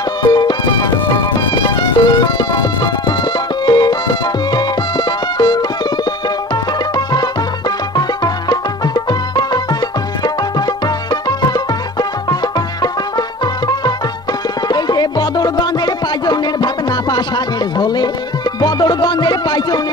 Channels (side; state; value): both; normal; correlation 0.39